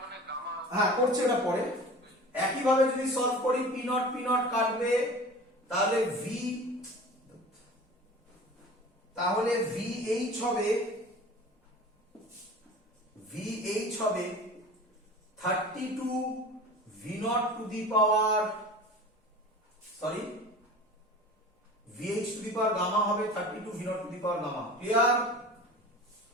হ্যাঁ করছে এটা পরে। একই ভাবে যদি সলভ করি P নট কাটবে, তাহলে VH হবে 32 V not to the power, sorry VH to the power gamma হবে 32 V not to the power gamma. Clear?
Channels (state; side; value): normal; both; correlation 0.38